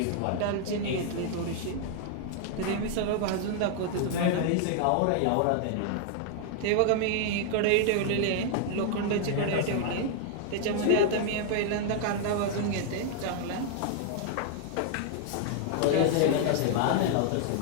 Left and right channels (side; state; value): both; different; correlation 0.00